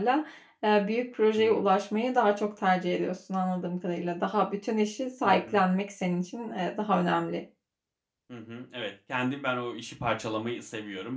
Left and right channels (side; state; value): both; identical; correlation 1.00